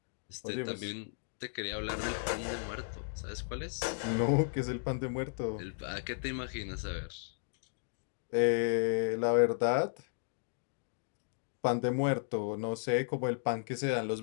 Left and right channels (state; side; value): silent; right; digital silence